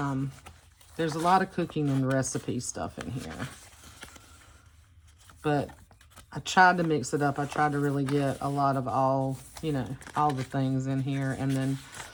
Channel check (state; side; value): identical; both; correlation 1.00